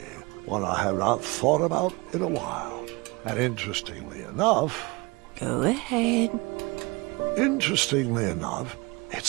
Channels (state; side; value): quieter; left; 25.4 dB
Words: one I have not thought about in a while. And interestingly enough... Go ahead. Interestingly enough,